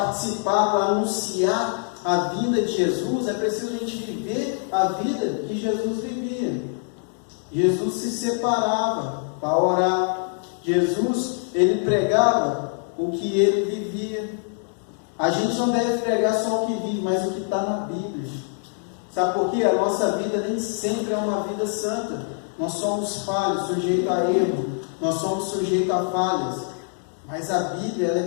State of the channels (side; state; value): right; silent; 62 dB below the other